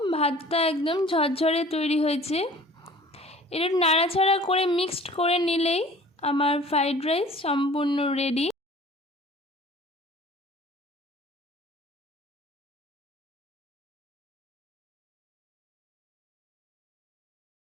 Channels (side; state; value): both; normal; correlation 0.48